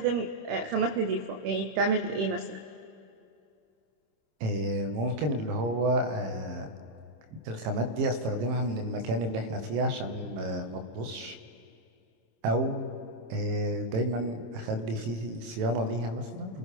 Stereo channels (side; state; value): left; late; 26 ms